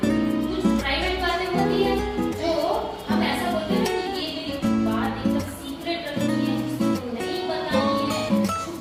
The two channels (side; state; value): both; identical; correlation 1.00